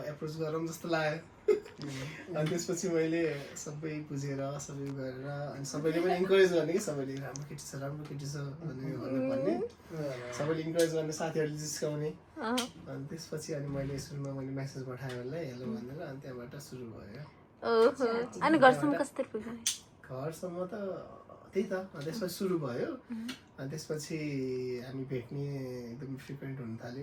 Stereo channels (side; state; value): both; identical; correlation 1.00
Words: एप्रोच गरौँ जस्तो लाग्यो अनि त्यसपछि मैले सबै बुझेर सबै गरेर अनि सबैले पनि इन्करेज गर्ने कि सबैले राम्रो केटी छ भन्ने सबैले इन्करेज गर्ने साथीहरूले जिस्काउने अनि त्यसपछि अनि मैले सुरुमा मेसेज पठाएँ उसलाई हेलो भनेर अनि त्यहाँबाट सुरु भयो अनि घरसम्म कसरी पुग्यो घरसम्म त त्यही त त्यसपछि सुरु भयो अनि त्यसपछि हामी भेट्ने एकदम फ्रिक्वेन्ट हुन